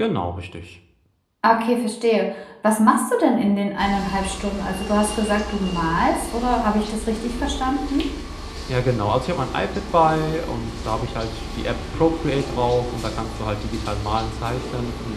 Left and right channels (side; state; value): both; identical; correlation 1.00